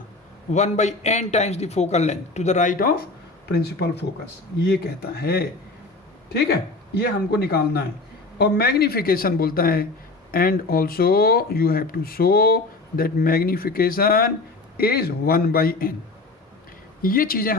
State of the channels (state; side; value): quieter; right; 3.4 dB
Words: 1/n times the focal length to the right of principal focus, ये कहता है, ठीक है? ये हमको निकालना है। और मैग्निफिकेशन बोलता है and also you have to show that magnification is 1/n। ये चीज़ें